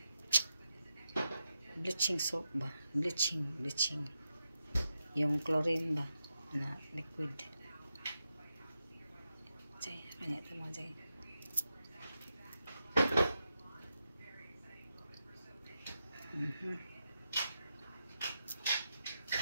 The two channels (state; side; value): inverted; both; correlation -0.87